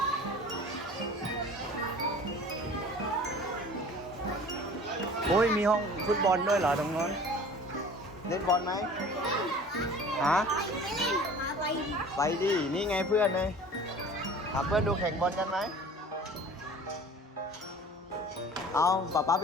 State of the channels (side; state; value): both; normal; correlation 0.44